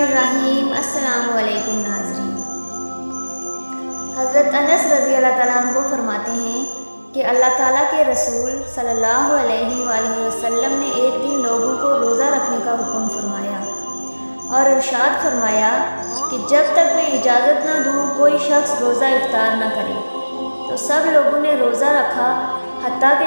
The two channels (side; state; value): both; inverted; correlation -1.00